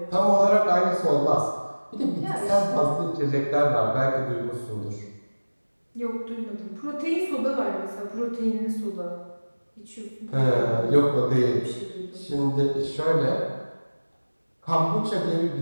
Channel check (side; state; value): both; inverted; correlation -1.00